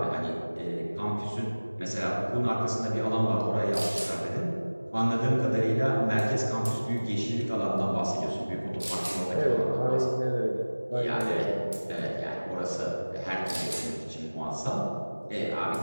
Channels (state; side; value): inverted; both; correlation -1.00